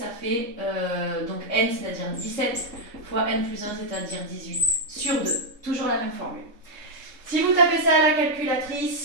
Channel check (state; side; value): late; left; 3.7 ms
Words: fait donc n, c'est-à-dire 17 fois n plus 1, c'est-à-dire 18, sur 2. Toujours la même formule. Si vous tapez ça à la